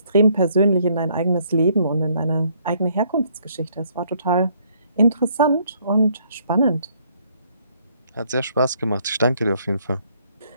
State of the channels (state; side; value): inverted; both; correlation -0.67